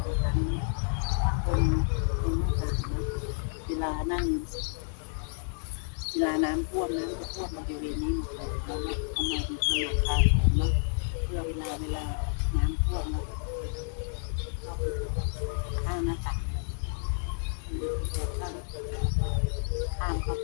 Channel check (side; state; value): right; silent; 58 dB below the other